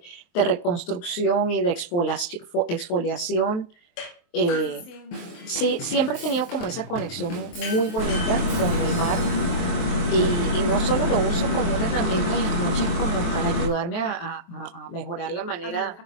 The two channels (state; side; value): late; right; 23 ms